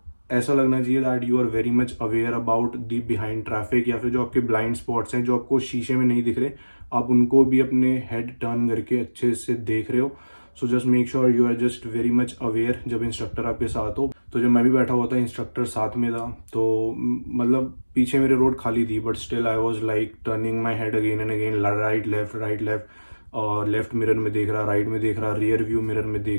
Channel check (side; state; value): both; inverted; correlation -1.00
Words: ऐसा लगना चाहिए that you are very much aware about the behind traffic, या फिर जो आपके ब्लाइंड स्पॉट्स हैं जो आपको शीशे में नहीं दिख रहे, आप उनको भी अपने हेड टर्न करके अच्छे से देख रहे हो। So just make sure you are just very much aware जब इंस्ट्रक्टर आपके साथ हो। तो जब मैं भी बैठा हुआ था, इंस्ट्रक्टर साथ में था, तो मतलब पीछे मेरे रोड खाली थी, but still I was like turning my head again and again, right left, और लेफ्ट मिरर में देख रहा, राइट में देख रहा, रियर व्यू मिरर में